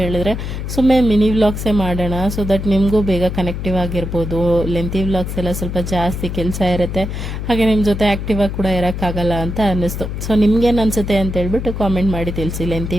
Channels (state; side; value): noise; left; hum, 5 dB below the sound